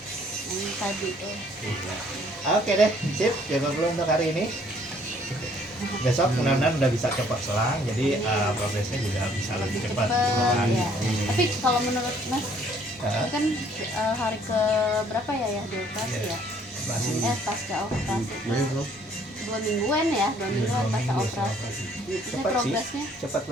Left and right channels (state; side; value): normal; both; correlation 0.61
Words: Yang tadi tuh. Oke deh, sip, jago dulu untuk hari ini. Besok mudah-mudahan udah bisa cepat selang, jadi progresnya juga bisa lebih cepat. gitu kan. Ya. Tapi kalau menurut Mas, Hah? ini kan hari ke berapa ya dioperasi ya? Masih Pasca operasi. Besok 2 mingguan ya, 2 mingguan 2 pasca minggu operasi. Ini Cepat sih. progresnya cepat